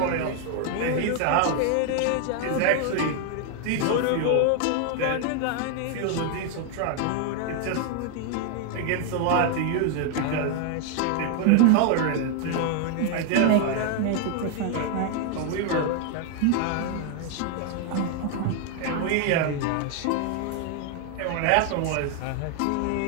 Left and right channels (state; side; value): different; both; correlation 0.00